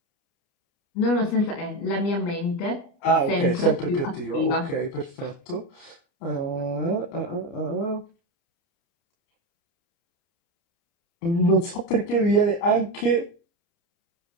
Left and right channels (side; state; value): right; late; 30 ms